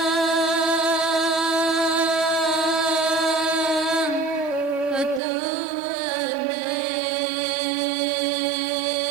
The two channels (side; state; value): left; drops out; at 5.2 s